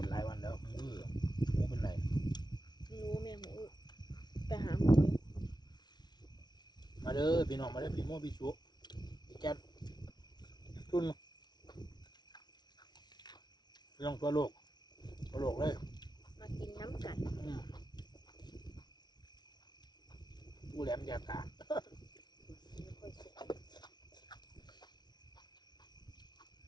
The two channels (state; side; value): late; right; 0.20 ms